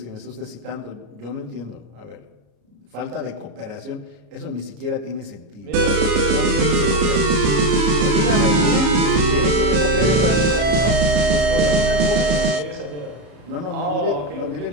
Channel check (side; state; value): left; late; 34 ms